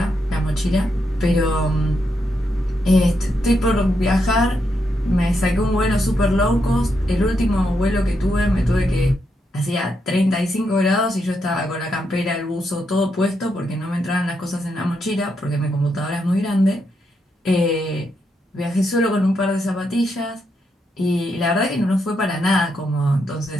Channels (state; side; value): normal; both; correlation 0.81